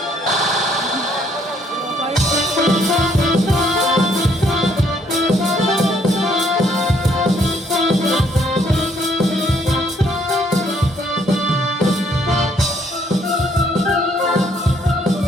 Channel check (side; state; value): both; normal; correlation 0.67